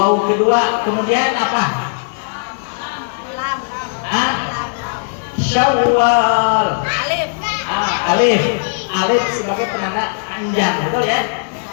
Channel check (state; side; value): silent; right; 64 dB below the other